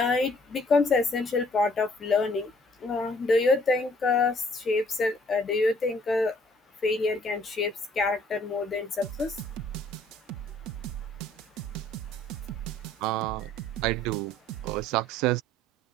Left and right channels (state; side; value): normal; both; correlation 0.60